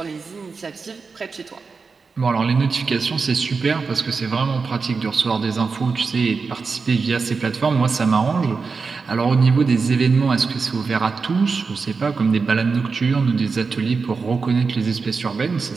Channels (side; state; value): left; quieter; 4.8 dB